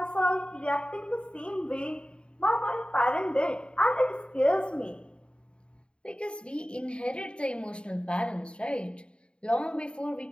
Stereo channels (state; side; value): late; right; 0.053 ms